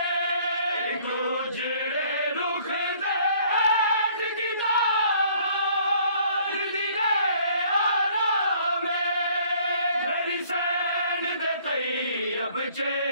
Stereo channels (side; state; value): both; inverted; correlation -0.59